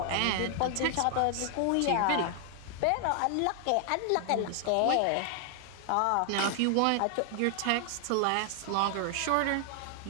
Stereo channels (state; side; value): different; both; correlation 0.00